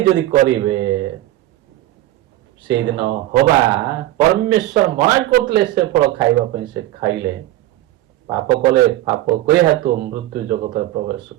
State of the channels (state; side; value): quieter; left; 15.4 dB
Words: ଯଦି କରିବେ, ସେଇଦିନ ହବା ପରମେଶ୍ୱର ମନା କରୁଥିଲେ ସେ ଫଳ ଖାଇବା ପାଇଁ, ସେ ଖାଇଲେ ପାପ କଲେ, ପାପ କରି ହେତୁ ମୃତ୍ୟୁ ଜଗତରେ ପ୍ରବେଶ